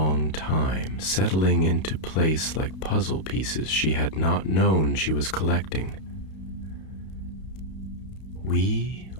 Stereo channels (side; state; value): right; late; 32 ms